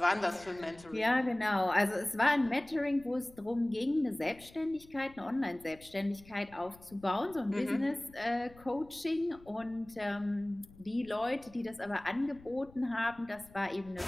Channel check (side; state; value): left; noise; rumble, 23 dB below the sound